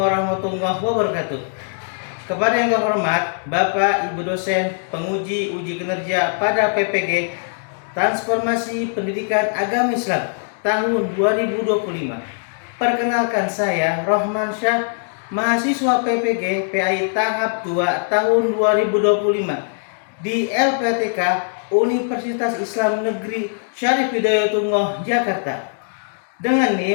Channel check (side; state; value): right; silent; digital silence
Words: warahmatullahi wabarakatuh. Kepada yang terhormat Bapak Ibu dosen penguji uji kinerja pada PPG Transformasi Pendidikan Agama Islam tahun 2025. Perkenalkan, saya Rohman Syah, mahasiswa PPG PAI tahap 2 tahun 2025 di LPTK Universitas Islam Negeri Syarif Hidayatullah Jakarta dengan